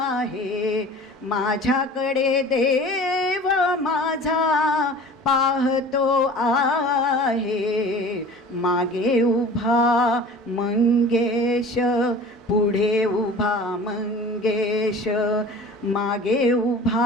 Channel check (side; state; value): both; normal; correlation 0.42